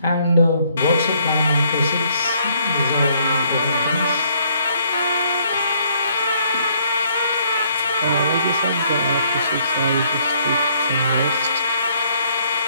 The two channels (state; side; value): inverted; both; correlation -0.66